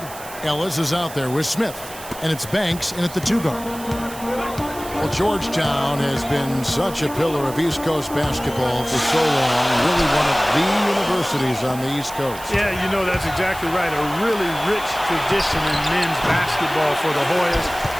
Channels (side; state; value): right; noise; hiss, 15 dB below the sound